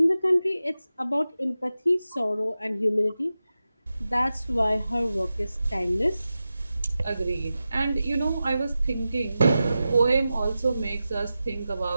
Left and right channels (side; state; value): both; inverted; correlation -0.93